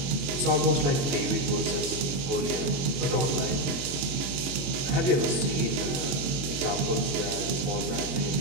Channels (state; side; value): late; left; 22 ms